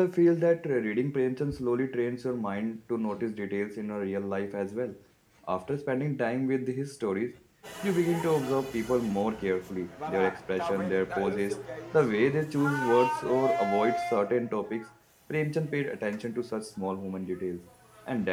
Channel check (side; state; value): both; identical; correlation 1.00